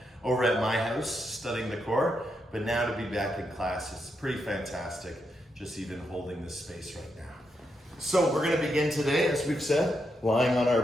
over at my house studying the core, but now to be back in class is pretty fantastic, just even holding this space right now. So we're gonna begin today, as we've said, lying on our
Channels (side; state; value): both; normal; correlation 0.82